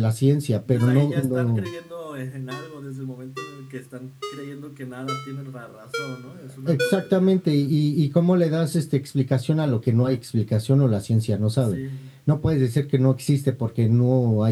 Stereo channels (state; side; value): identical; both; correlation 1.00